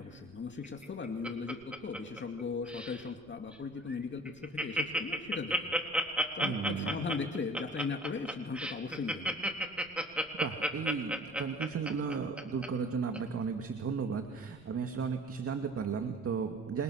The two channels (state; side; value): noise; right; rumble, 25 dB below the sound